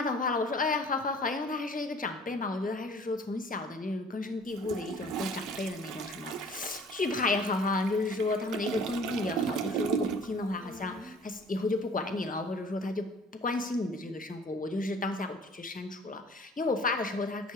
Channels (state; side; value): normal; both; correlation 0.50